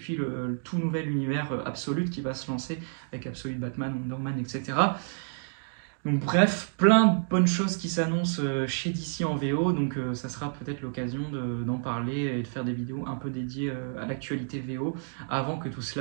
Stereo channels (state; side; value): silent; left; digital silence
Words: le tout nouvel univers Absolute qui va se lancer, avec Absolute Batman, Wonder Man, etc. Donc bref, plein de bonnes choses qui s'annoncent chez DC en VO, donc ça sera peut-être l'occasion d'en parler et de faire des vidéos un peu dédiées à l'actualité VO, avant que tout